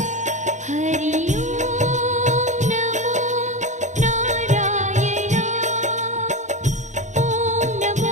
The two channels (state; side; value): late; left; 0.35 ms